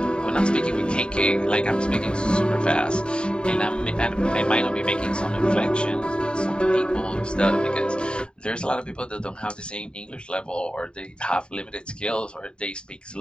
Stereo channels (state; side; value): late; right; 0.051 ms